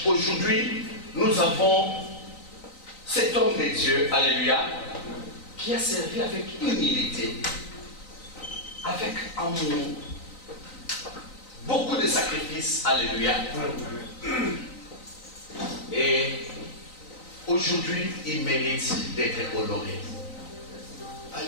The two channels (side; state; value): right; late; 3.9 ms